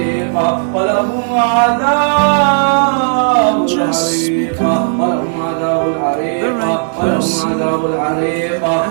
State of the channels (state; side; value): silent; left; digital silence